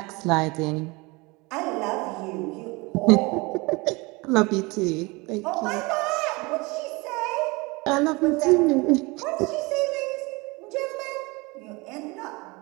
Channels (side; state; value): left; quieter; 25.3 dB